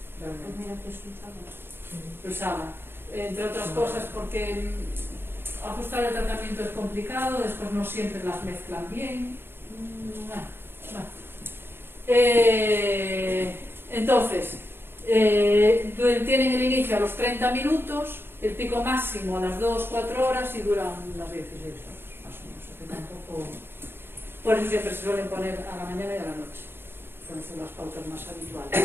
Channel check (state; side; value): late; left; 0.11 ms